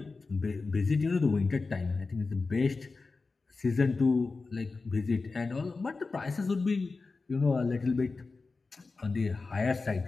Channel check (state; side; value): quieter; right; 4.0 dB